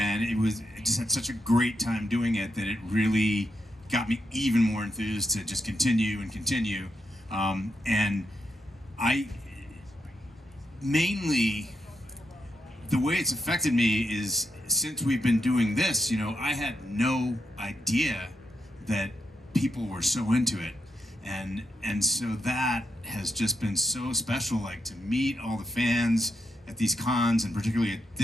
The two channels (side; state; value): both; normal; correlation 0.83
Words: it just had such a great time doing it that it really got me even more enthused to just continue. And I mainly, the way it's affected me is since we've been doing this, I had no idea that people were so into it. And so that has just been so special, like to meet all the fans at these cons and particularly at